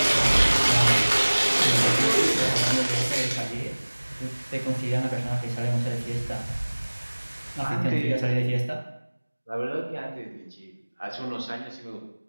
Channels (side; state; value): both; inverted; correlation -1.00